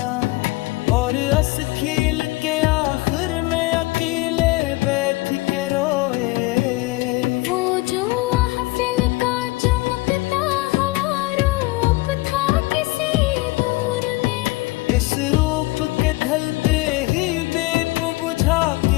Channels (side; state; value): right; quieter; 21.7 dB